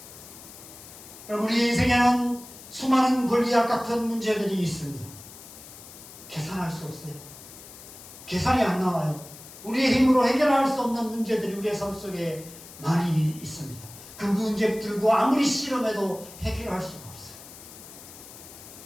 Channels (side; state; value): left; noise; hiss, 17 dB below the sound